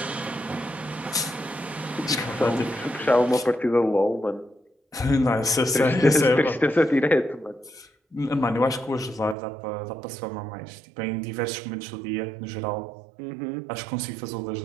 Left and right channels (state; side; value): drops out; left; at 9.3 s